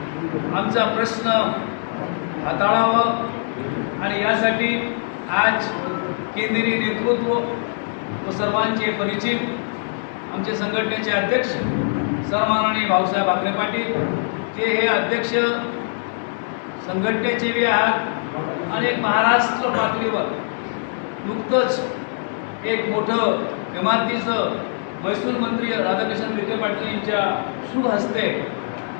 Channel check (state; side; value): silent; right; digital silence